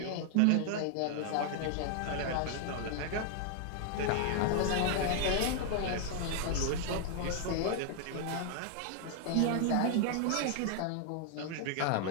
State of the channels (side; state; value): both; different; correlation 0.00